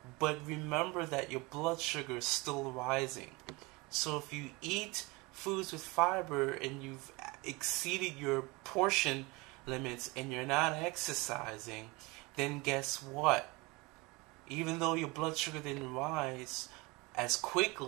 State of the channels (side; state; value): left; quieter; 25.0 dB